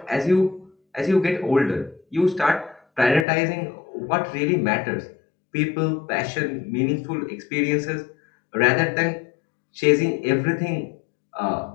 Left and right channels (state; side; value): drops out; right; at 3.2 s